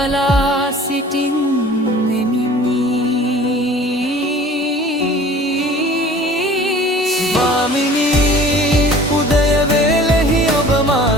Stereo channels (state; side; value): normal; both; correlation 0.47